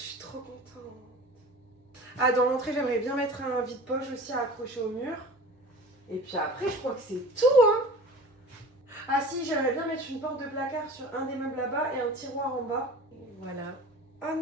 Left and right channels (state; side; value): normal; both; correlation 0.39